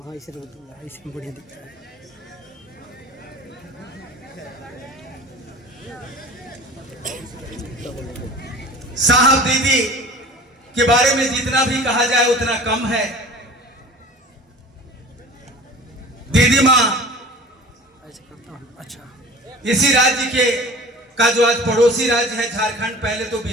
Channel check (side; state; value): both; normal; correlation 0.42